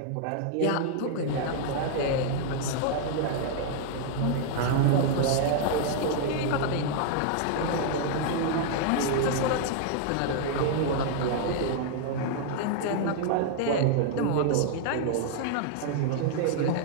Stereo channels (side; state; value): both; different; correlation 0.00